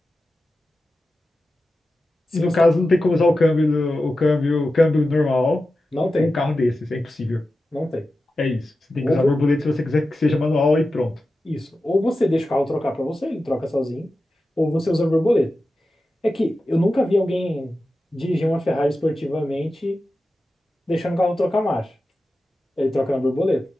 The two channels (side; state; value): both; normal; correlation 0.93